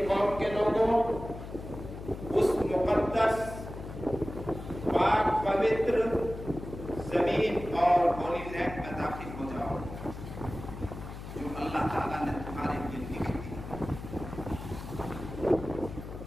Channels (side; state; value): left; noise; hum, 10 dB below the sound